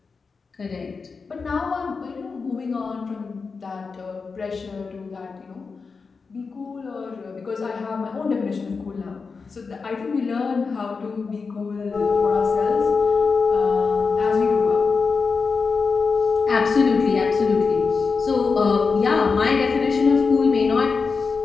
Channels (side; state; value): right; quieter; 4.8 dB